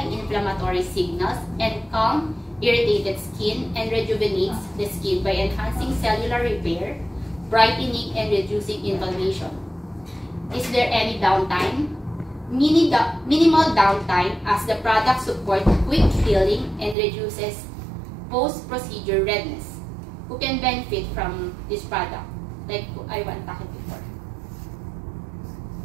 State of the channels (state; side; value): drops out; left; at 16.9 s